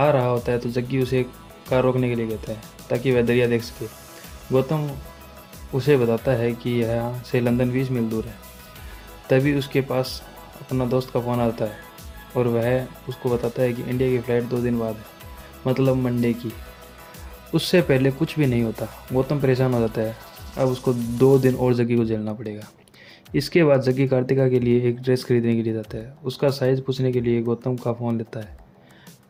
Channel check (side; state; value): both; identical; correlation 1.00